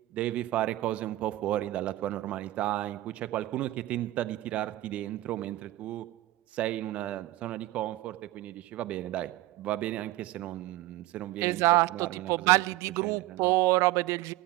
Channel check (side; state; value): left; quieter; 17.0 dB